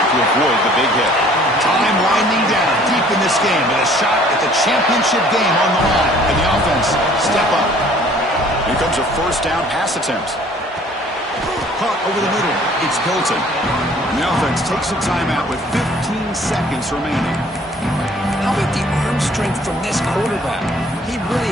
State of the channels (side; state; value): both; normal; correlation 0.55